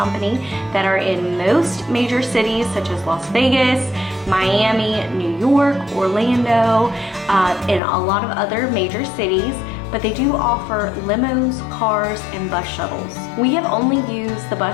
that are in most major cities such as Las Vegas, Miami, New York, Orlando, and a lot of other major cities. But they do offer limos, cars, and bus shuttles. We have only used the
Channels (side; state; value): right; drops out; at 7.8 s